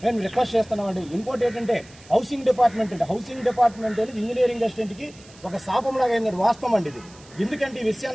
మేము రిక్వెస్ట్ చేస్తున్నామండి. ఇంకోటి ఏంటంటే హౌసింగ్ డిపార్ట్మెంట్ అనేది ఇంజనీరింగ్ అసిస్టెంట్కి ఒక శాపంలాగా అయింది. వాస్తవం అండి ఇది. ఎందుకంటే ఈ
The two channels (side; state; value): right; noise; hiss, 23 dB below the sound